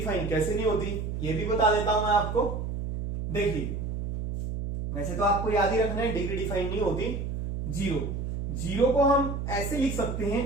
कैसे नहीं होती, ये भी बता देता हूं मैं आपको। देखिए वैसे तो आपको याद ही रखना है डिग्री डिफाइन नहीं होती। 0 को हम ऐसे लिख सकते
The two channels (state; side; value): noise; right; hum, 4 dB below the sound